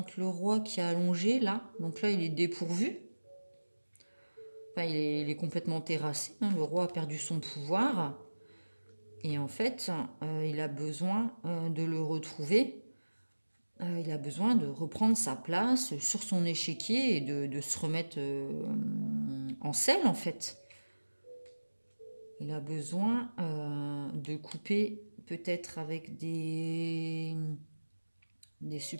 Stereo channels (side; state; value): both; inverted; correlation -1.00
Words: le roi qui est allongé là. Donc là, il est dépourvu. Enfin, il est complètement terrassé, hein. Le roi a perdu son pouvoir. Et en fait, il a besoin de le retrouver. Il a besoin de reprendre sa place sur son échiquier et de se remettre en selle, en fait. Il a besoin de couper peut-être avec des